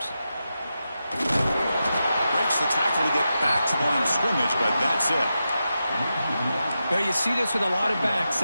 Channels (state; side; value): inverted; both; correlation -0.89